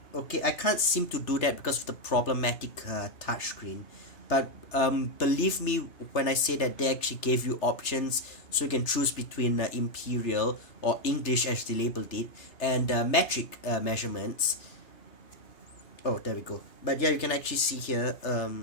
Okay, I can't seem to do that because of the problematic touchscreen. But believe me when I say that they actually gave you options, so you can choose between imperial or English as they labeled it, and metric measurements. Oh, there we go. But yeah, you can actually see here,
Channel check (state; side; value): late; right; 3.3 ms